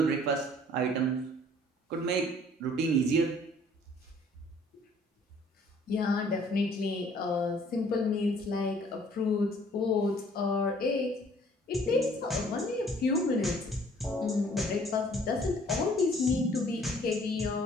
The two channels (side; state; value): both; normal; correlation 0.57